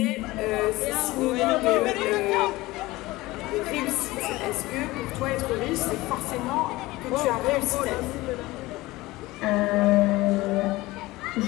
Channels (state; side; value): quieter; right; 19.6 dB